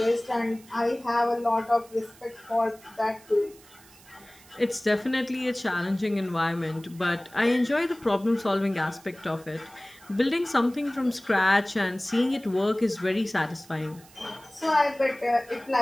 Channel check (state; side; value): noise; right; hiss, 24 dB below the sound